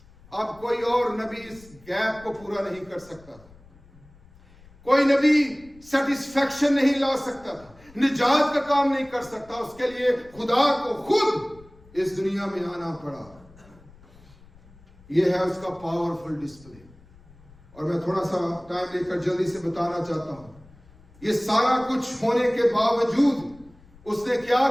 اب کوئی اور نبی اس گیپ کو پورا نہیں کر سکتا تھا، کوئی نبی سیٹسفیکشن نہیں لا سکتا تھا، نجات کا کام نہیں کر سکتا۔ اس کے لیے خدا کو خود اس دنیا میں آنا پڑا۔ یہ ہے اس کا پاورفل ڈسپلے۔ اور میں تھوڑا سا ٹائم لے کر جلدی سے بتانا چاہتا ہوں، یہ سارا کچھ ہونے کے باوجود اس نے کیا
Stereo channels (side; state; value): left; noise; rumble, 25 dB below the sound